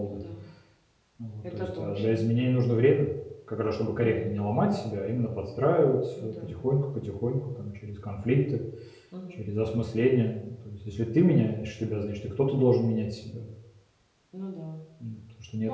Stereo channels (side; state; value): both; identical; correlation 1.00